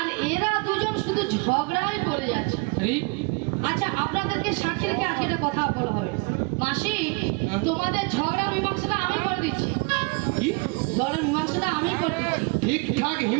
এরা দুজন শুধু ঝগড়াই করে যাচ্ছে। আচ্ছা, আপনাদেরকে সাক্ষী রেখে আজকে একটা কথা বলা হবে। মাসি, তোমাদের ঝগড়া মীমাংসাটা আমি করে দিচ্ছি। কি? ঝগড়া মীমাংসাটা আমি করে দিচ্ছি। ঠিকঠাক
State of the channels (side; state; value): left; quieter; 30.2 dB